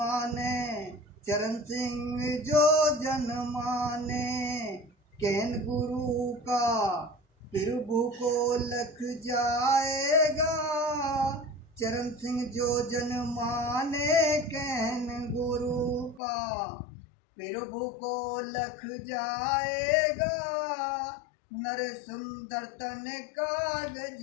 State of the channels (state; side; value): drops out; right; at 16.2 s